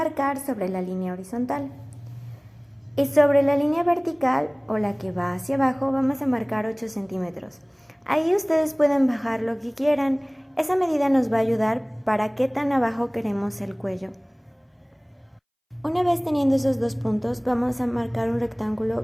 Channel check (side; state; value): both; identical; correlation 1.00